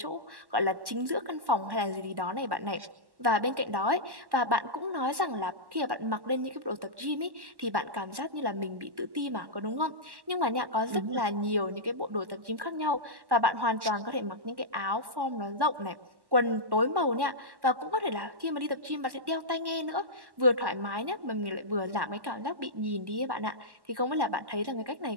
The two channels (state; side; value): late; left; 1.1 ms